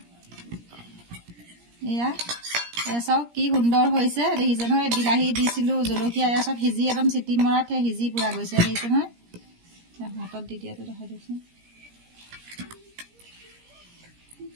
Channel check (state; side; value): late; left; 17 ms